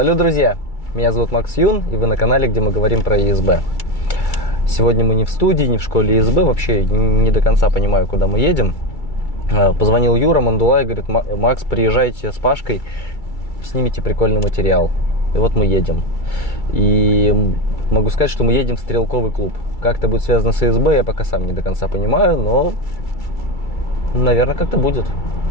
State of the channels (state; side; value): late; right; 2.3 ms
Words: друзья! Меня зовут Макс Юн, и вы на канале, где мы говорим про ЕСБ. Сегодня мы не в студии, не в школе ЕСБ, вообще не до конца понимаю, куда мы едем. Позвонил Юра Мандулай, говорит: Макс, приезжайте с Пашкой, снимите прикольный материал. И вот мы едем. И могу сказать, что мы едем в стрелковый клуб. Как это будет связано с ЕСБ, я пока сам не до конца понимаю, но, наверное, как-то будет.